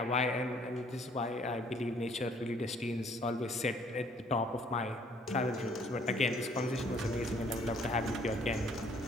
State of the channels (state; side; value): normal; both; correlation 0.60